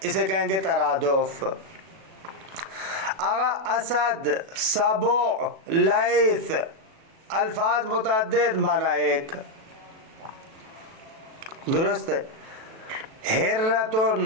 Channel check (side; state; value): left; late; 37 ms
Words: اسے کہیں گے ترادف. آگا اسد، سبع، لیث الفاظ متعدد معنی ایک، درست ہے.